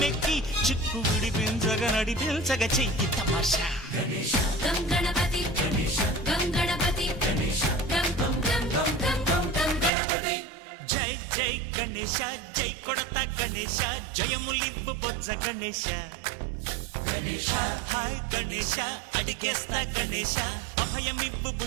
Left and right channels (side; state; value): left; drops out; at 9.9 s